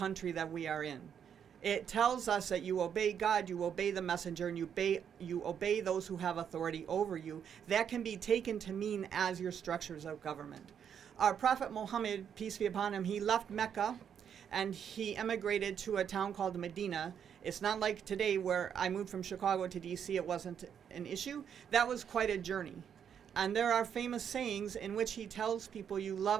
that we are in. It tells us that you obey God, you obey the messenger, and you obey those who have authority over you. That can be taken to mean as your structures of government. Our Prophet Muhammad, peace be upon him, he left Mecca and he emigrated to a town called Medina. It's not like today where I moved from Chicago to DC, it wasn't an issue. That was quite a journey. And there are famous sayings in which he tells people, you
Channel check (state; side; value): quieter; left; 8.2 dB